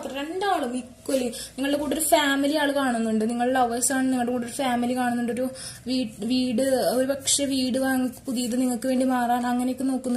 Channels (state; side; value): identical; both; correlation 1.00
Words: രണ്ടാളും ഈക്വലി. നിങ്ങളുടെ കൂടെ ഒരു ഫാമിലി ആൾ കാണുന്നുണ്ട്. നിങ്ങൾ ലവേഴ്സ് ആണ്, നിങ്ങളുടെ കൂടെ ഒരു ഫാമിലി കാണുന്നുണ്ട്. ഒരു വീട്, ഒരു പക്ഷെ വീട് വാങ്ങി പുതിയത് നിങ്ങൾക്ക് വേണ്ടി മാറാൻ അങ്ങനെയൊക്കെ